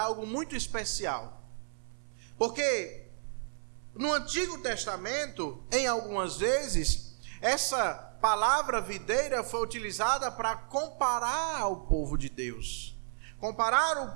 algo muito especial, porque no Antigo Testamento, em algumas vezes, essa palavra videira foi utilizada para comparar o povo de Deus, comparar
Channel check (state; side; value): silent; left; 56 dB below the other